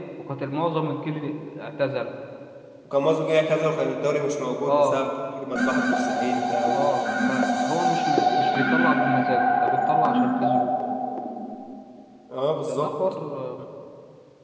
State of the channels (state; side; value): identical; both; correlation 1.00